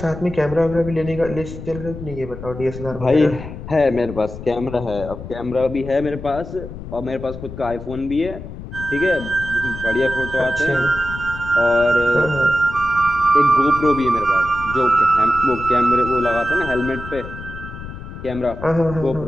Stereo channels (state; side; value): noise; left; rumble, 11 dB below the sound